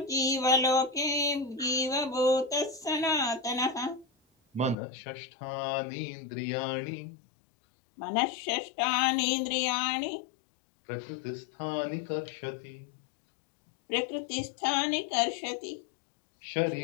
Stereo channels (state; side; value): drops out; right; at 4.8 s